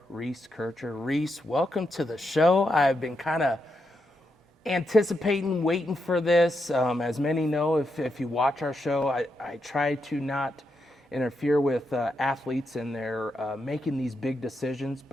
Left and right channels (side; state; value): both; normal; correlation 0.83